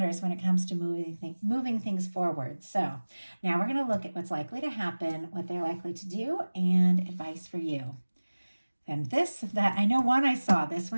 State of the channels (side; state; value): both; inverted; correlation -1.00